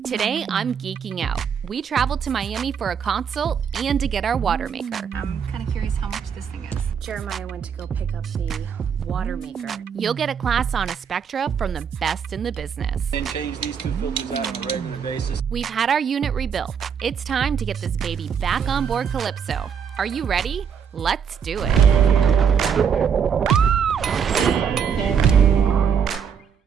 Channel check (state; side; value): quieter; left; 7.2 dB